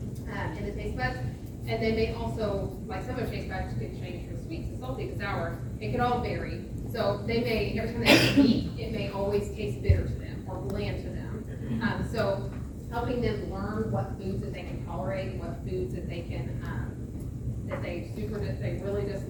in the taste buds. And they may also, like some of their taste buds could change from sweet to salty to sour. It could all vary. So they may, every time they eat, it may always taste bitter to them or bland to them. So helping them learn what foods that they can tolerate, what foods that they can, that they really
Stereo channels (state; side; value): identical; both; correlation 1.00